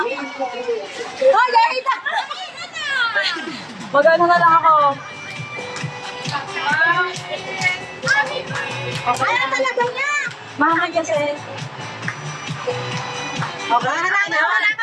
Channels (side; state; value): both; identical; correlation 1.00